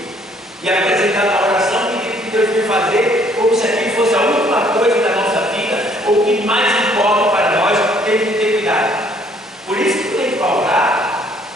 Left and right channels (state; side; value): normal; both; correlation 0.62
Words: e apresentar na oração o que Deus vai fazer, como se aquilo fosse a última coisa da nossa vida, ou o que mais importa para nós. Temos que ter cuidado. Por isso que tem que orar,